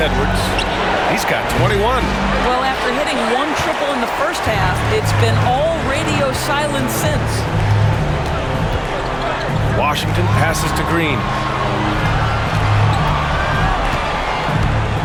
He's got 21. Well, after hitting one triple in the first half, it's been all radio silence since. Washington passes to Green.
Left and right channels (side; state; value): both; identical; correlation 1.00